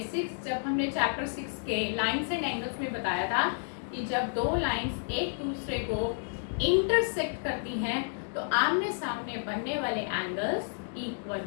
जब हमने चैप्टर 6 के लाइंस एंड एंगल्स में बताया था कि जब दो लाइंस एक दूसरे को इंटरसेक्ट करती हैं तो आमने सामने बनने वाले एंगल्स इक्वल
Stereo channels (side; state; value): right; silent; digital silence